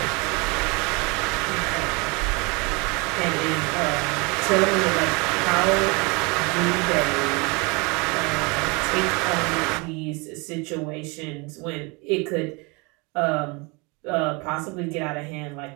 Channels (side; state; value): left; quieter; 28.6 dB